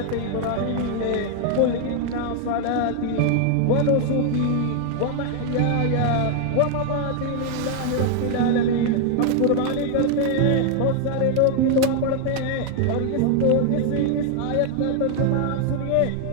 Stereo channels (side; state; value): both; different; correlation 0.00